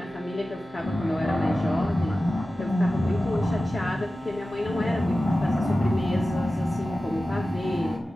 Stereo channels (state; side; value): normal; both; correlation 0.94